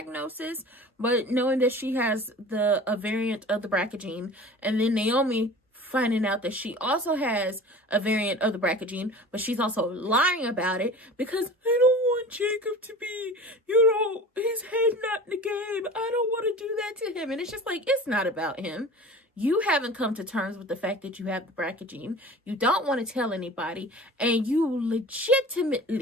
but knowing that she has a variant of the BRCA gene, and then Naomi finding out that she also has a variant of the BRCA gene, but she's also lying about it because I don't want Jacob to be, his head not in the game. I don't want to do that to him. And it's just like, it's not about him. You haven't come to terms with the fact that you have the BRCA gene. You don't want to tell anybody, and you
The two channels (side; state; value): both; normal; correlation 0.39